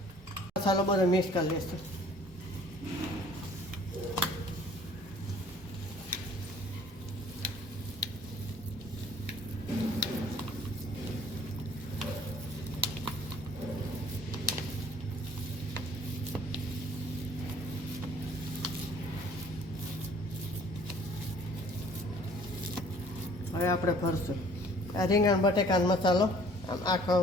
મસાલો બધો મિક્સ કરી લઈશું. હવે આપણે ભરશું. આ રીંગણ બટેકાનો મસાલો આમ આખો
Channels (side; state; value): both; normal; correlation 0.55